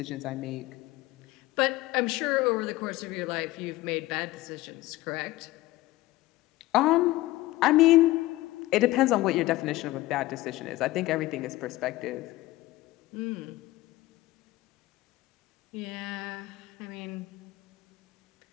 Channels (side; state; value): right; quieter; 17.9 dB